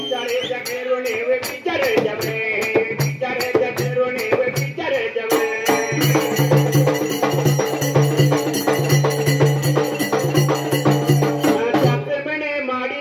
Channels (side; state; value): both; identical; correlation 1.00